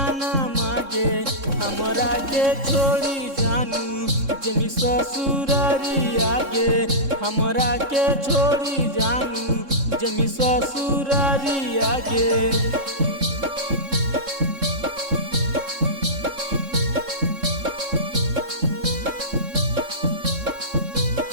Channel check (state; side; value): late; left; 3.6 ms